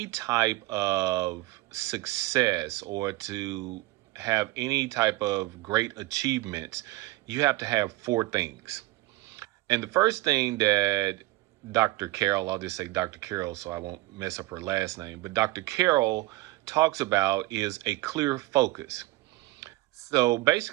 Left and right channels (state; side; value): quieter; left; 19.2 dB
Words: type of success or to have any type of great achievements, you have to have four things. And the first thing that Dr. Carol, I'll just say Dr. Carol so I won't mess up her last name, but Dr. Carol talks about is a clear focus. So